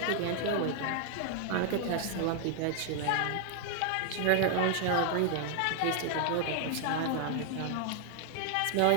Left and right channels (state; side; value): different; both; correlation 0.00